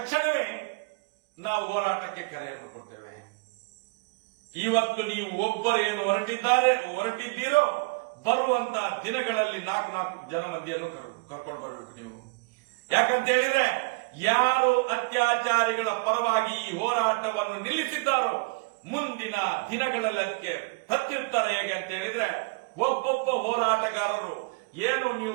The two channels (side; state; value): left; quieter; 29.6 dB